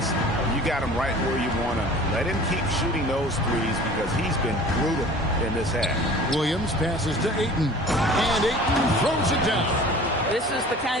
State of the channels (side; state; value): both; normal; correlation 0.44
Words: you got him right where you want him. Let him keep shooting those threes because he's been brutal in this half. Williams passes to Ayton. And Ayton throws it down. This is the